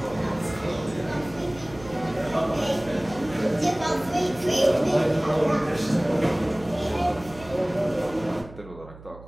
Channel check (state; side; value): noise; right; hum, 18 dB below the sound